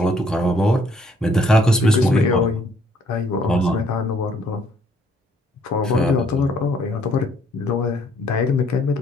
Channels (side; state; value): both; normal; correlation 0.65